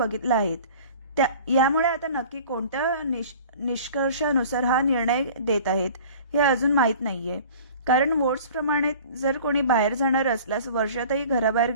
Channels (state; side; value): inverted; both; correlation -0.44